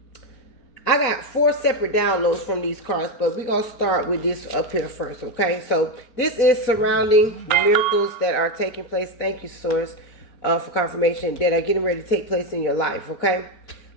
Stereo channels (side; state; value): right; late; 4.1 ms